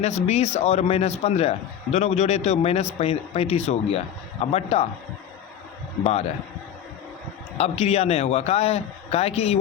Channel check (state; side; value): quieter; right; 9.6 dB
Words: 20 और माइनस 15 दोनों को जोड़े तो माइनस 35 हो गया। अब बट्टा 12। अब क्रिया नहीं होगा, का है कि y